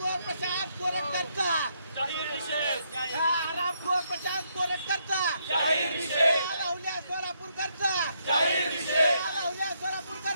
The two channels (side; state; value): both; inverted; correlation -0.75